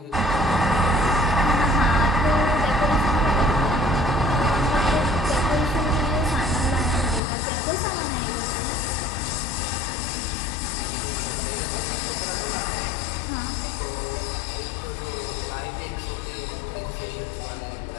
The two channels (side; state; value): right; drops out; at 7.2 s